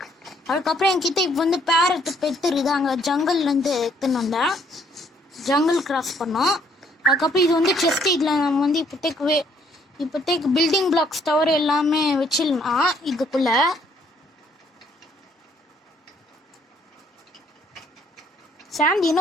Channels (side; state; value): both; normal; correlation 0.66